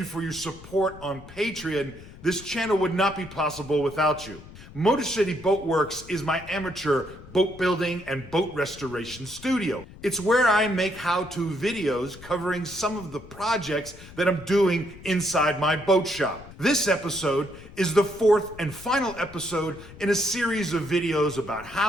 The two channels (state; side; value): noise; left; rumble, 18 dB below the sound